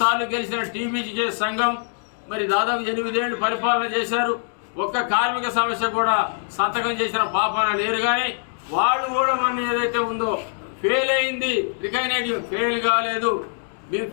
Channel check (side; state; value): right; silent; digital silence